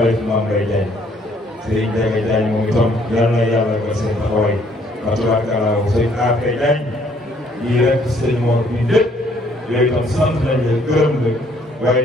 Mame Mbaye Diagne sëñ Ndiaga Diagne moom itam yal na yàlla ba seen taxawaay Fatou sëñ AP Diagne lii rek sëñ Mor bi lépp yooyu itam sant nañ la gërëm la waaye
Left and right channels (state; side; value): normal; both; correlation 0.64